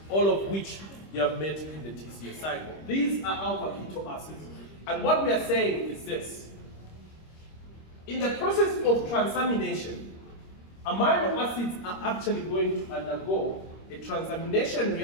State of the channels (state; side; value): late; right; 25 ms